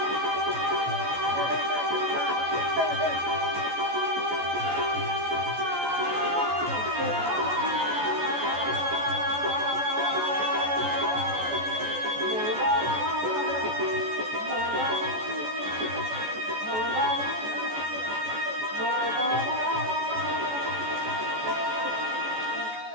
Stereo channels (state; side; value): late; left; 14 ms